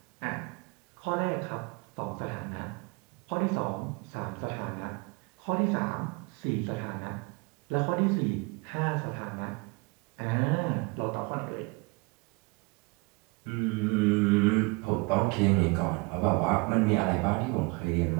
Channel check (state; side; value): quieter; left; 28.6 dB